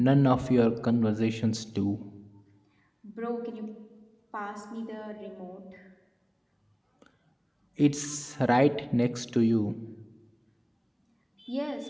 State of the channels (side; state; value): both; identical; correlation 1.00